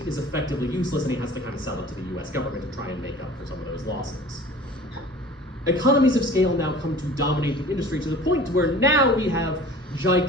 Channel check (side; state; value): both; normal; correlation 0.44